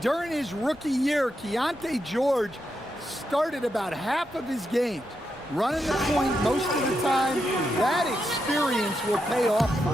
during his rookie year, Keontae George started about half of his games, running the point most of the time. That experience will pay off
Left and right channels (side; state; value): both; normal; correlation 0.84